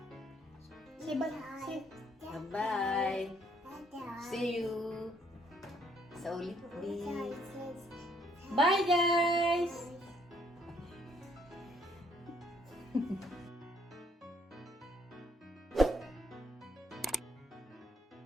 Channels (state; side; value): normal; both; correlation 0.67